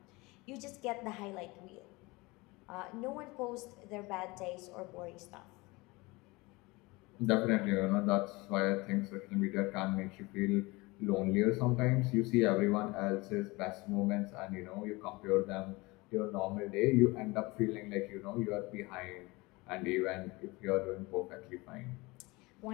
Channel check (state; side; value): quieter; right; 23.6 dB